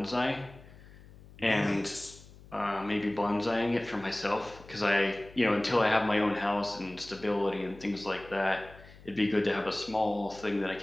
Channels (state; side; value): noise; left; hum, 21 dB below the sound